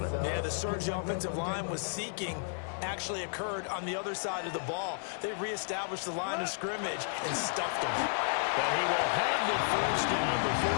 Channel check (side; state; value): right; silent; digital silence